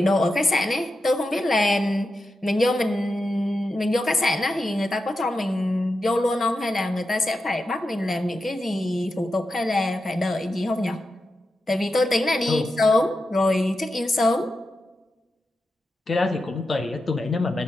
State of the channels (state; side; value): normal; both; correlation 0.89